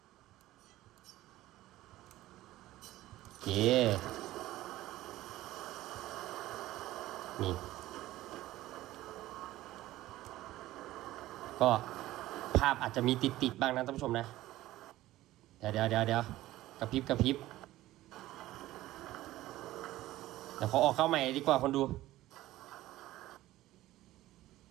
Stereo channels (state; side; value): quieter; left; 15.9 dB